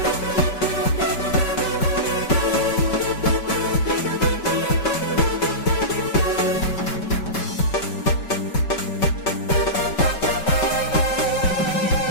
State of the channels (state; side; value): late; right; 5.3 ms